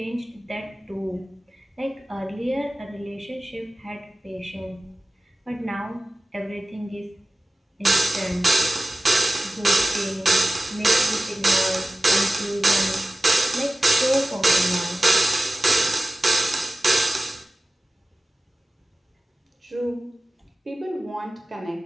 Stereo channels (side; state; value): both; normal; correlation 0.96